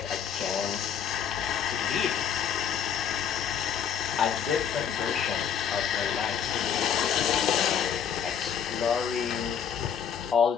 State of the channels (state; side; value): quieter; right; 8.1 dB